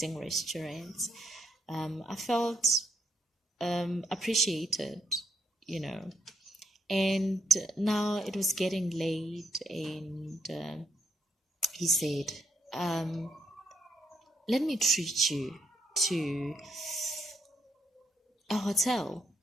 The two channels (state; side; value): normal; both; correlation 0.75